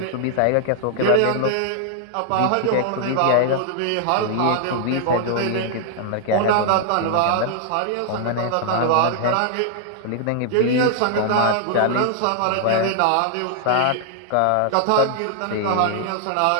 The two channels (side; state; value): both; different; correlation -0.01